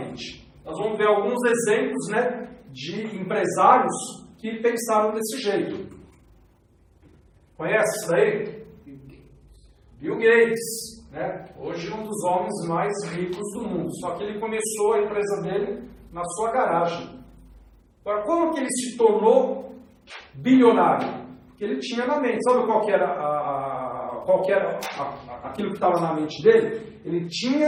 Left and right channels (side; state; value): both; identical; correlation 1.00